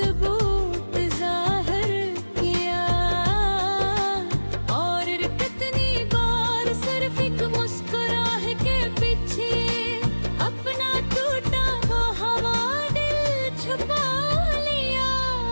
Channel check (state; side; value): inverted; both; correlation -1.00